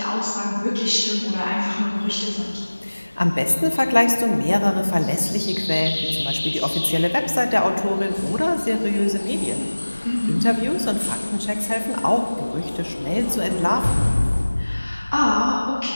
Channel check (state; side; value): inverted; both; correlation -1.00